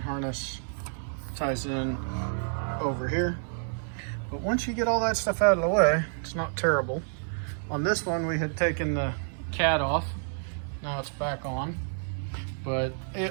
ties in over here. But once you get all that stuff out of the way, it's not terrible. On this one, we had taken the cat off. Now it's back on, but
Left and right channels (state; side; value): silent; left; 58 dB below the other